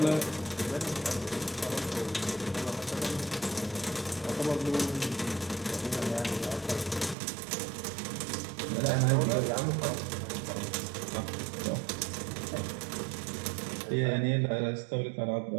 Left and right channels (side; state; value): left; drops out; at 7.2 s